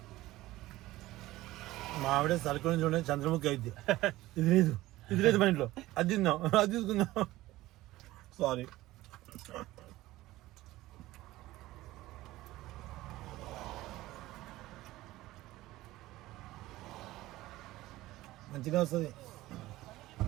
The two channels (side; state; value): left; quieter; 17.2 dB